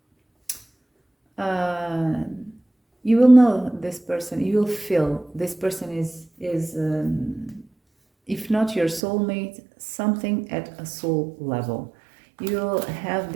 you will know this person, you will feel this person is if not your soulmate, something at a soul level. You will have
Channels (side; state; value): left; drops out; at 9.0 s